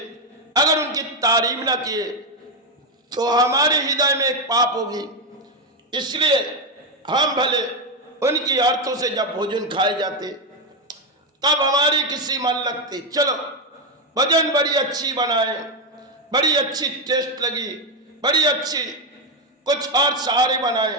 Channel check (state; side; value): normal; both; correlation 0.07